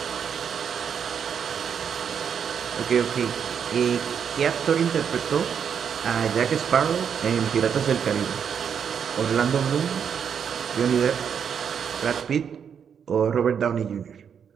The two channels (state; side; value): quieter; left; 7.5 dB